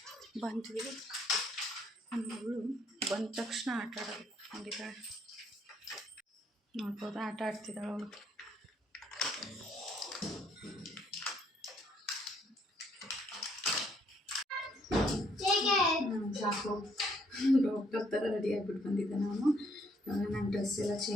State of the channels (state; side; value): normal; both; correlation 0.68